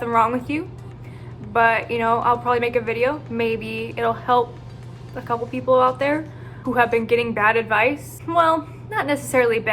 wrong with you. But, you know, I'll probably make a video. Maybe it'll help a couple people out there who have been getting bad advice. Well, not necessarily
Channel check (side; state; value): both; identical; correlation 1.00